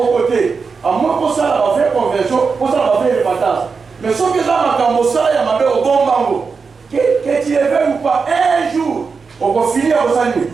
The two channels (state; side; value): quieter; left; 5.1 dB